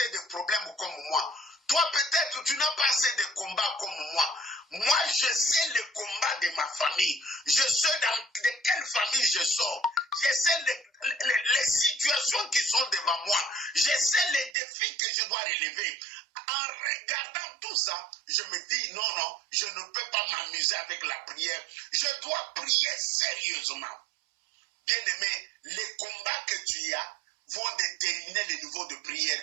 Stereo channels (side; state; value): left; drops out; at 14.6 s